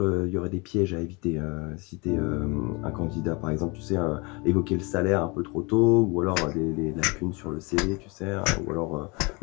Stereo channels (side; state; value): right; quieter; 28.2 dB